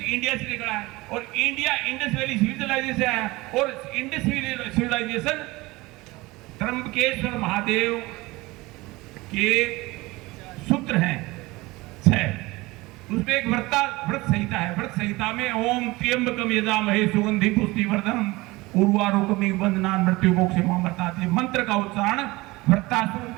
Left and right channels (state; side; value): quieter; left; 21.5 dB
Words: से निकला है। और इंडिया इंडस वैली सिविलाइजेशन से आया, और इंडस सिविलाइजेशन त्र्यंबकेश्वर महादेव के सूत्र हैं 6। उसमें एक व्रत संहिता है। व्रत संहिता में ओम त्र्यंबकम यजामहे सुगंधि पुष्टिवर्धनम उर्वारुकमिव बंधनान् मृत्युमोक्षमामृतात् मंत्र का उच्चारण